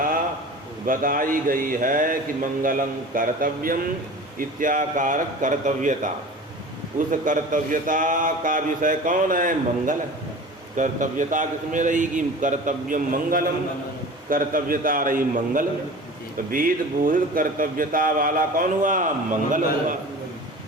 बताई गई है कि मंगलम कर्तव्यम इत्याकारक कर्तव्यता। उस कर्तव्यता का विषय कौन है? मंगल। कर्तव्यता किसमें रहेगी? कर्तव्यम मंगलम। कर्तव्यता रही मंगल। तो वेद बोधित कर्तव्यता वाला कौन हुआ? मंगल हुआ।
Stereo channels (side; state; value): both; normal; correlation 0.38